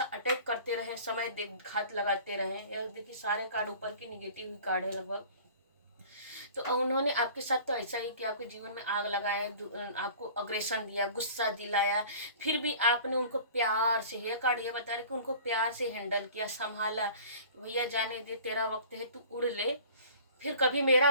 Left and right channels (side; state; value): both; inverted; correlation -0.45